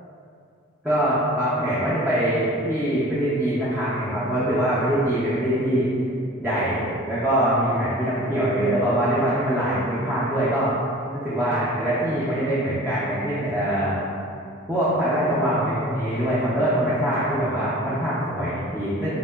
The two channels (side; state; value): both; normal; correlation 0.43